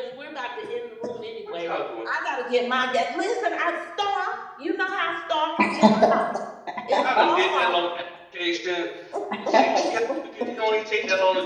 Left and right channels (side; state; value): both; identical; correlation 1.00